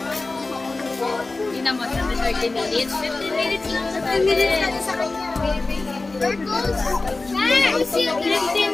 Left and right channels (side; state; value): right; quieter; 3.4 dB